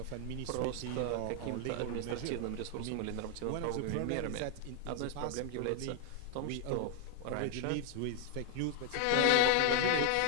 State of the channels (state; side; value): different; both; correlation 0.00